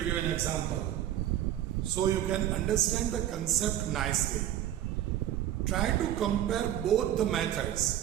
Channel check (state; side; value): quieter; left; 11.9 dB